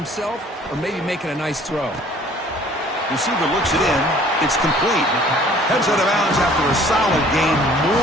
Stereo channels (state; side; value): normal; both; correlation 0.54